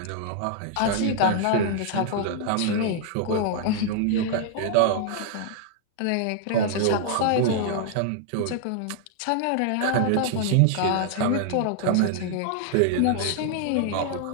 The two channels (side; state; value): both; different; correlation -0.01